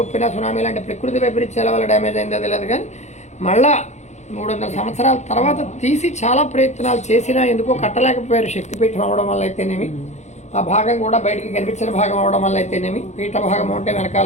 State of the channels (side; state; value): right; late; 0.33 ms